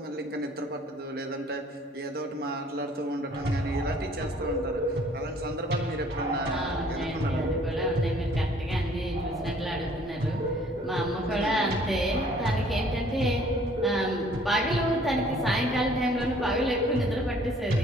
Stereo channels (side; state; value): both; normal; correlation 0.57